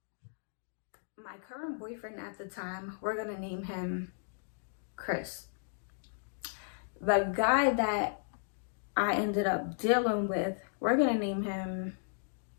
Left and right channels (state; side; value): silent; right; digital silence